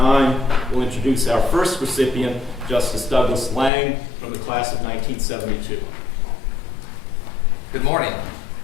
will introduce our first recipient, Justice Douglas Lang from the class of 1972. Good morning.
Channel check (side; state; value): right; drops out; at 3.7 s